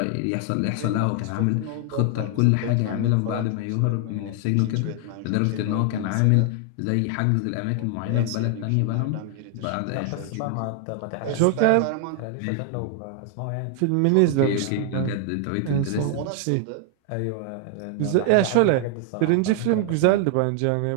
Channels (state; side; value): different; both; correlation 0.00